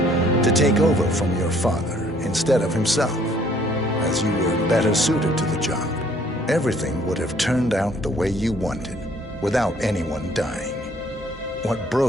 to take over from your father instead of himself, as you were better suited to the job. Everything would have turned out the way you wanted, without anyone dying. What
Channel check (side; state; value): both; normal; correlation 0.61